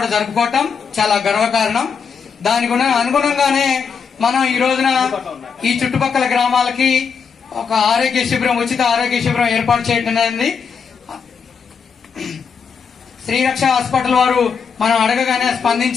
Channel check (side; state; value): right; quieter; 6.2 dB